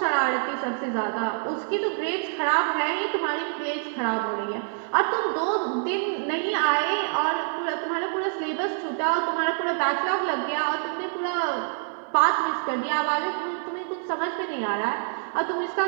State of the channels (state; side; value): silent; left; digital silence